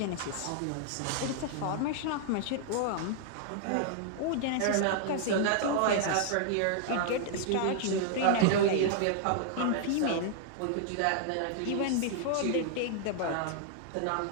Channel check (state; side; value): different; both; correlation -0.01